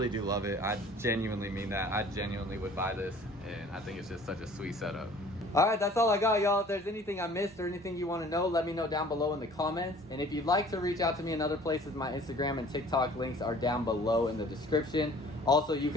do love it. I genuinely mean that. I genuinely would buy this, and I think it's just such a sweet setup. All right, that's all I got, y'all. If there's anything I missed or anything you want to know, let me know down below in the comments. And if you'd like to reach out to me in other places, my Instagram and TikTok links are down below in the description. Also, you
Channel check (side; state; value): both; normal; correlation 0.50